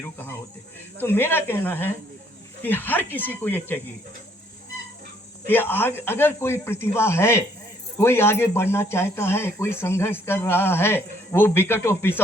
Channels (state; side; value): normal; both; correlation 0.66